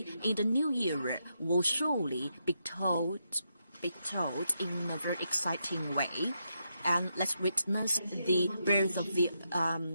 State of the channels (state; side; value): inverted; both; correlation -0.83